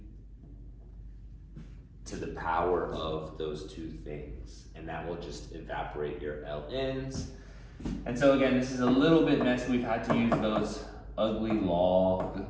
to the power of those 2 things, and that will just evaporate your ln's. And so again, this is a little bit messy. We've had to use those ugly log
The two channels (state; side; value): identical; both; correlation 1.00